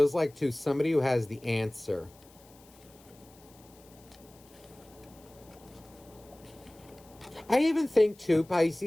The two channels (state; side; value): noise; left; hiss, 26 dB below the sound